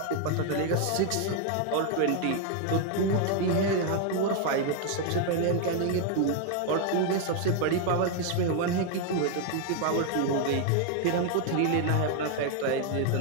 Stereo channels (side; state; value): both; different; correlation 0.00